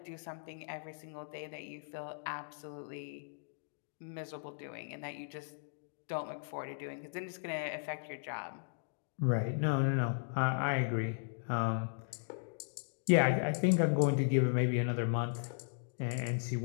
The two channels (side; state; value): right; silent; digital silence